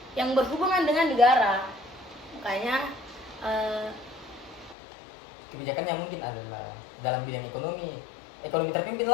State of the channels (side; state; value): right; drops out; at 4.8 s